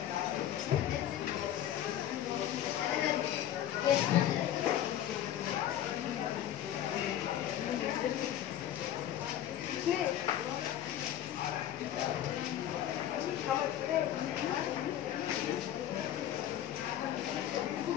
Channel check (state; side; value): quieter; right; 11.5 dB